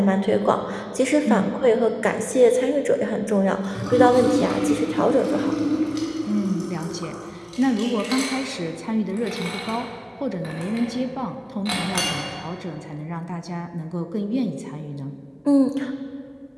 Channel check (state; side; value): identical; both; correlation 1.00